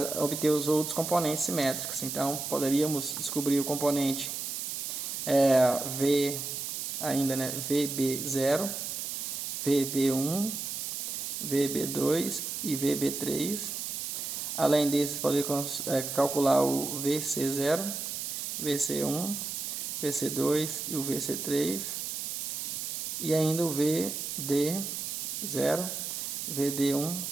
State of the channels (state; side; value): noise; right; hiss, 4 dB below the sound